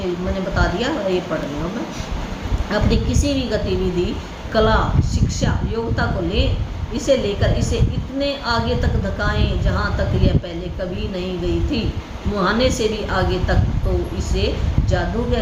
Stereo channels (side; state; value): both; identical; correlation 1.00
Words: मैंने बता दिया, ये पढ़ रही हूँ मैं। अपनी किसी भी गतिविधि, कला, शिक्षा, योग्यता को लें, इसे लेकर इसे इतने आगे तक धकाएं जहाँ तक यह पहले कभी नहीं गई थी, मुहाने से भी आगे तक, तो इसे जादू